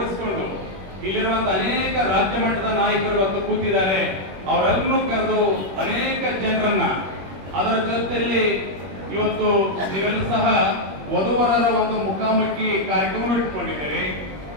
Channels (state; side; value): late; left; 21 ms